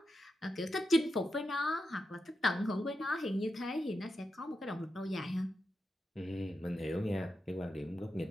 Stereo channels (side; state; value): both; normal; correlation 0.88